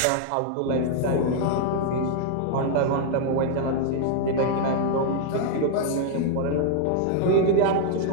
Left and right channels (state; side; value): different; both; correlation -0.01